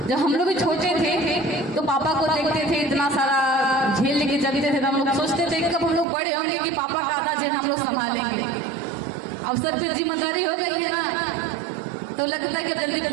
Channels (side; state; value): left; drops out; at 6.1 s